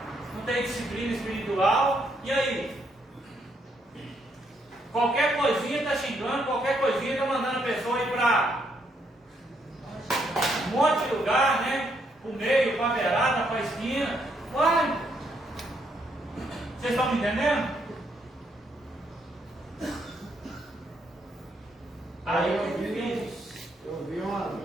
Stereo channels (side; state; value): both; normal; correlation 0.74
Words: não tem disciplina espiritual. E aí? Qualquer coisinha está xingando, qualquer coisinha está mandando a pessoa ir para um monte de lugar, né? Para o meio, para a beirada, para a esquina. Uai! Vocês estão me entendendo? Aí eu vi